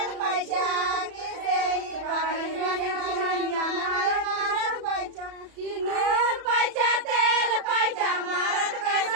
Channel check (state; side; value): late; left; 33 ms